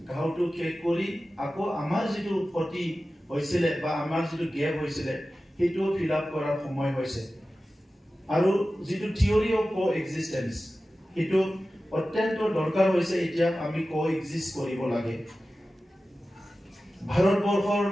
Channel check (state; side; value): normal; both; correlation 0.95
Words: ঘাওটো শেষ কৰি আকৌ আমাৰ যিটো ক্ষতি হৈছিলে বা আমাৰ যিটো গেপ হৈছিলে, সেইটোও ফিল আপ কৰাৰ সময় হৈছে। আৰু যিটো থিয়ৰি অফ কো এক্সিষ্টেঞ্চ, সেইটো অত্যন্ত দৰকাৰ হৈছে। এতিয়া আমি কো এক্সিষ্ট কৰিব লাগে। ভাৰতবৰ্ষৰ